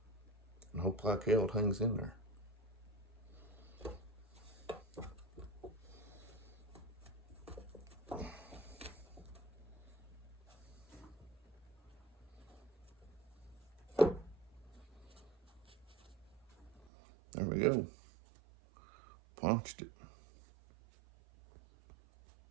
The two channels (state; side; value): drops out; left; at 16.9 s